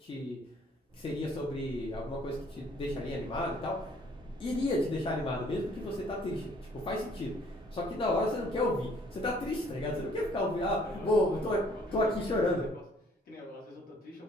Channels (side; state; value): both; normal; correlation 0.60